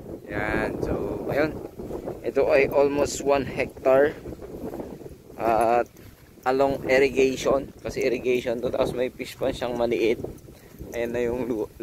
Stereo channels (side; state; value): both; identical; correlation 1.00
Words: Yan. So ayun, ito ay almost 1 hectare at along irrigation, kasi irrigation to, tapos may fish pan siyang maliit. Ayan na yung